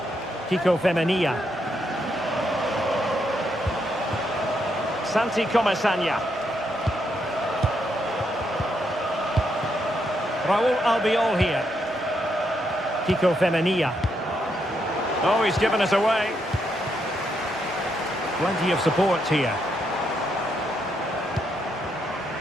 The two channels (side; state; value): both; normal; correlation 0.78